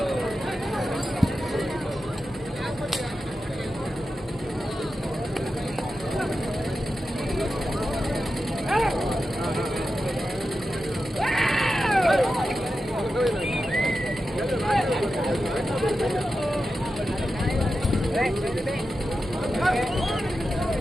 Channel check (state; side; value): normal; both; correlation 0.91